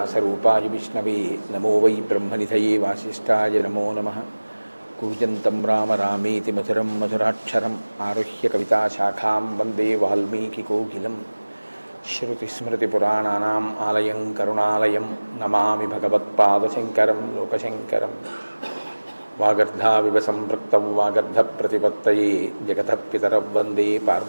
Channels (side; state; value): both; inverted; correlation -1.00